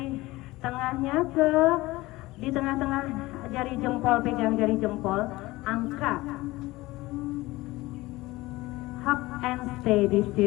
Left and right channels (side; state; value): right; quieter; 19.6 dB